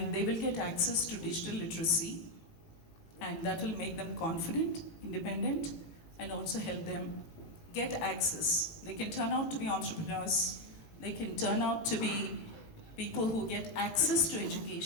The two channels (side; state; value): right; late; 18 ms